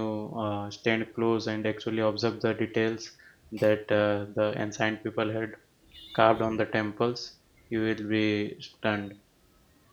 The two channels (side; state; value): both; identical; correlation 1.00